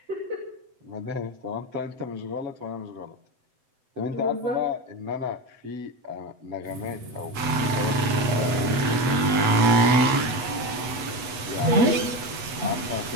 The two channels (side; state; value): left; late; 8.2 ms